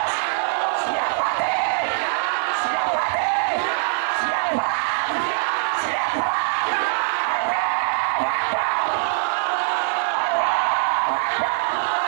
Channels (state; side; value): silent; left; 56 dB below the other